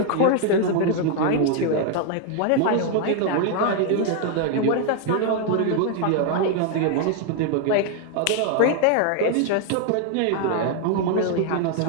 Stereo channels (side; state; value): both; different; correlation 0.00